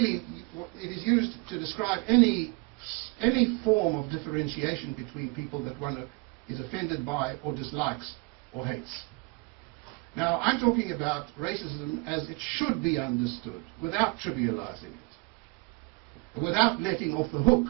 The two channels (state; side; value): quieter; left; 28.7 dB